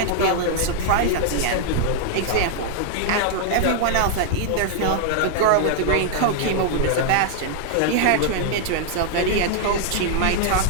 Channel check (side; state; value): both; different; correlation -0.01